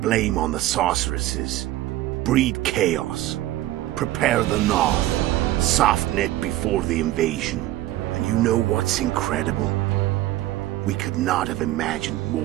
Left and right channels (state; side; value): quieter; left; 15.5 dB